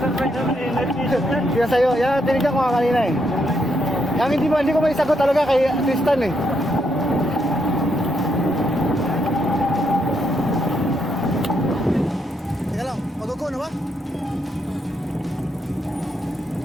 surprise naman eh, night vision yan. Kaya sa'yo, yan tinignan ko nga kanina eh. Yang hindi ko may sagot talaga kay Tristan eh. Teka lang, mag-go na ba?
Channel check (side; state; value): both; normal; correlation 0.77